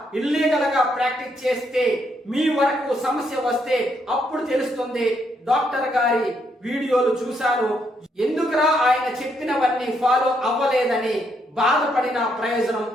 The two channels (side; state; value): both; normal; correlation 0.75